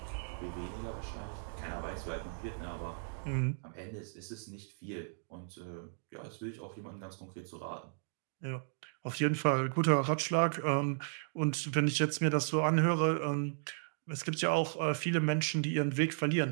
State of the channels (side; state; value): left; silent; digital silence